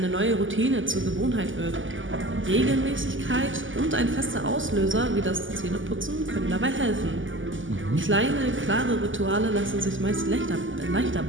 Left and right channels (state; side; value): late; left; 0.57 ms